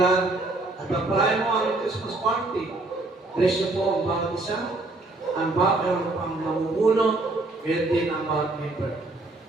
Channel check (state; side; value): quieter; left; 3.0 dB